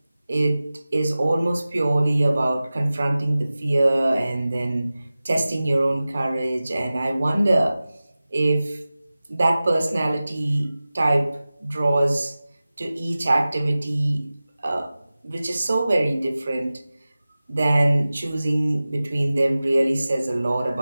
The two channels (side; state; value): both; inverted; correlation -0.97